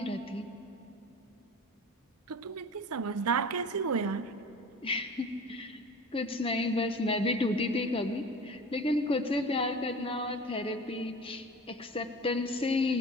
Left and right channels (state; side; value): normal; both; correlation 0.37